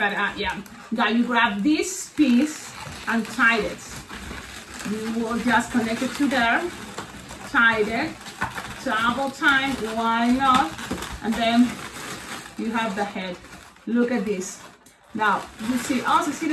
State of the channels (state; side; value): identical; both; correlation 1.00